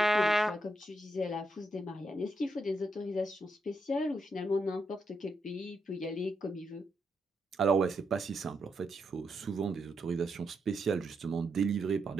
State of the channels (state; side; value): normal; both; correlation 0.82